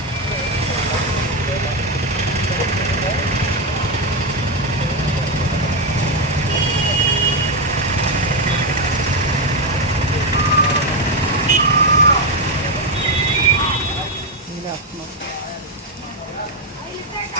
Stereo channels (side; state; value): both; normal; correlation 0.07